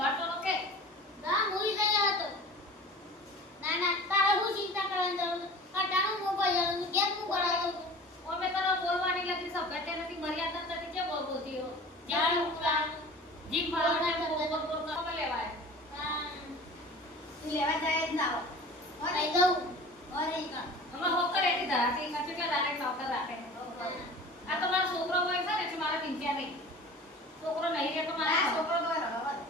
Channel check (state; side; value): normal; both; correlation 0.40